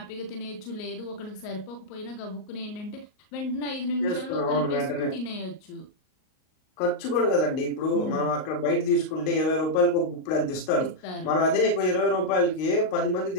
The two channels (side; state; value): right; late; 38 ms